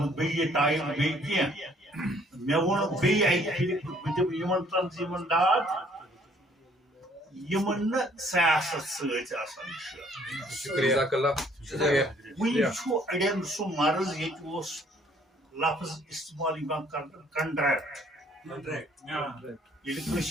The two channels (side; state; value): both; normal; correlation 0.61